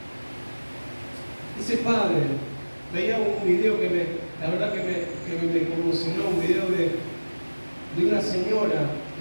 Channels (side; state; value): both; inverted; correlation -1.00